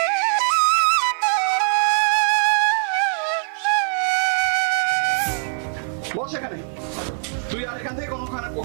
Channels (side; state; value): left; silent; 56 dB below the other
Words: বস এখানে। তুই আর এখান থেকে